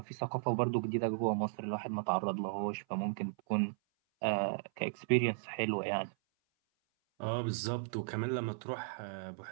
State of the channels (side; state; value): left; silent; 54 dB below the other